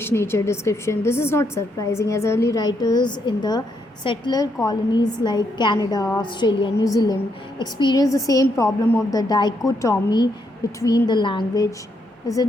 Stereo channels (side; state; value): both; normal; correlation 0.77